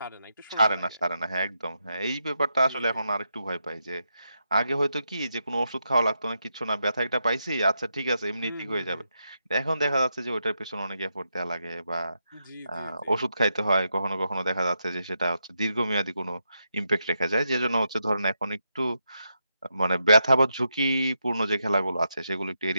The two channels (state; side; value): inverted; both; correlation -0.83